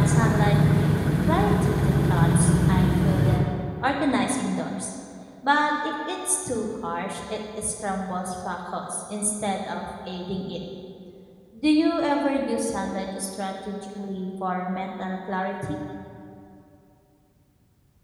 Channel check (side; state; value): both; identical; correlation 1.00